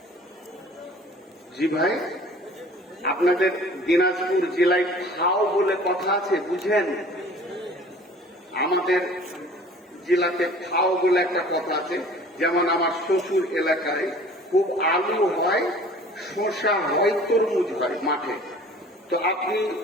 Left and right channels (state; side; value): normal; both; correlation 0.48